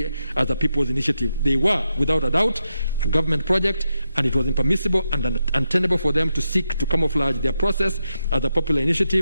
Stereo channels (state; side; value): inverted; both; correlation -0.85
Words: as a people's initiative. They were, without a doubt, a government project, and it was impermissible and untenable for them to seek to camouflage their process as a popular